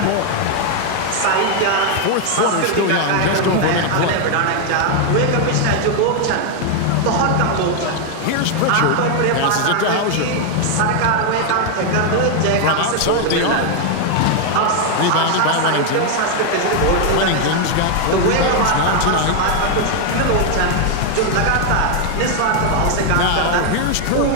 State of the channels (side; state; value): both; different; correlation 0.00